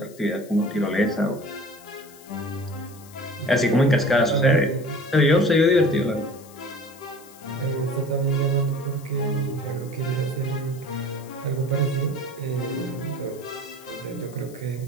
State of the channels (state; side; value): noise; left; hiss, 22 dB below the sound